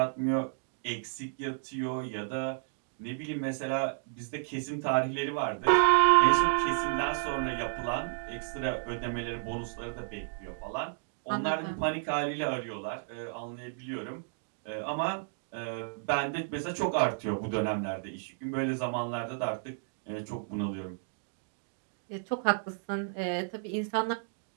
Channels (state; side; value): silent; left; digital silence